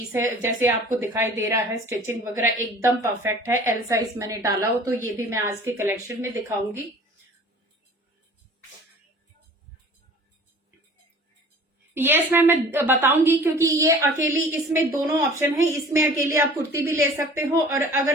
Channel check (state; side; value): normal; both; correlation 0.46